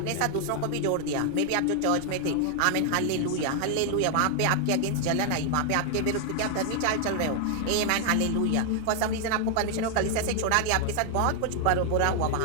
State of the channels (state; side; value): different; both; correlation 0.00